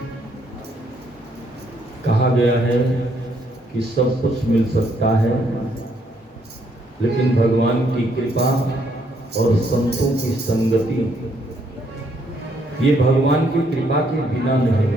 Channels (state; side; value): normal; both; correlation 0.71